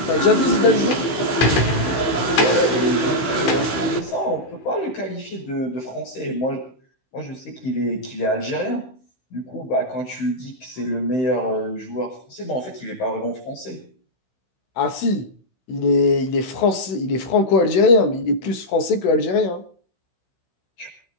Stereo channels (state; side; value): late; right; 16 ms